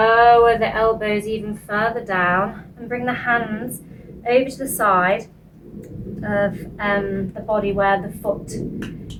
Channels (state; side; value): identical; both; correlation 1.00